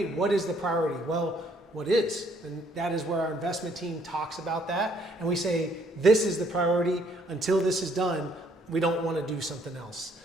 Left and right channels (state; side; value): normal; both; correlation 0.66